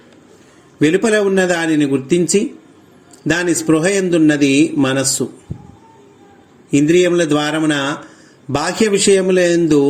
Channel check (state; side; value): identical; both; correlation 1.00